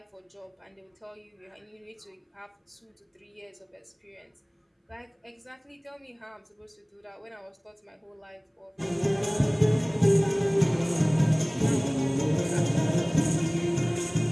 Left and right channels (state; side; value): identical; both; correlation 1.00